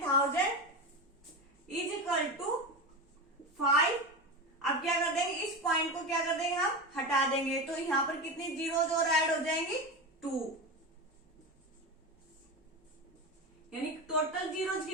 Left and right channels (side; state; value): both; normal; correlation 0.22